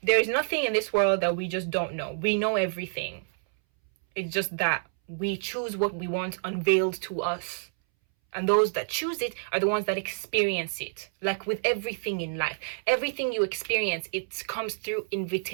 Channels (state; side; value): silent; left; 59 dB below the other